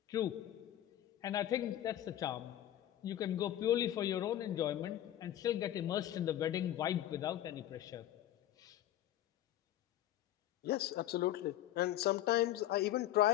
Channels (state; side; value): quieter; right; 12.6 dB